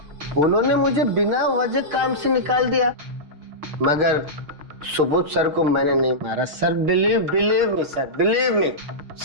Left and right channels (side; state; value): left; late; 6.5 ms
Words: उन्होंने मुझे बिना वजह काम से निकाल दिया, मगर सुबोध सर को मैंने नहीं मारा sir. Believe me sir, believe me,